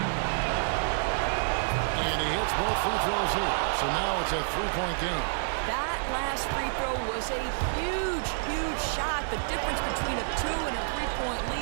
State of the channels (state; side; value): silent; left; 59 dB below the other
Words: And he hits both free throws here. So now it's a 3-point game. That last free throw was a huge, huge shot. The difference between a 2 and a 3-point